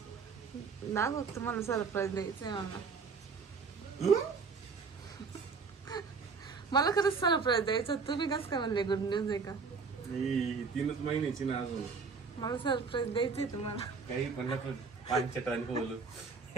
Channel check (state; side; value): quieter; left; 5.0 dB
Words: ना, फक्त मला सरप्राईज द्यायचंय. मला खरंच सरप्राईज द्यायचं. तुम्ही कसं काय म्हणले गुड न्यूज आहे का? 3 महिन्याची ना अजून. मला सरप्राईज द्यायचंय तुम्हाला. काही पण 5 टन बोलू.